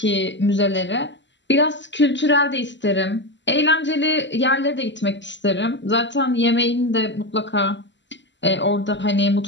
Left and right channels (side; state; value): right; late; 0.53 ms